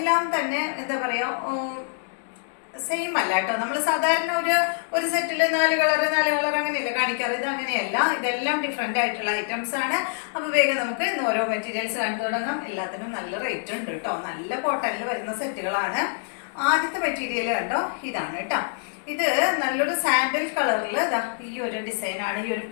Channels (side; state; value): right; silent; digital silence